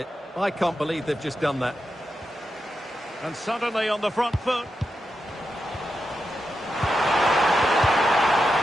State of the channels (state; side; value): normal; both; correlation 0.88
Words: I can't believe they've just done that. And suddenly on the front foot.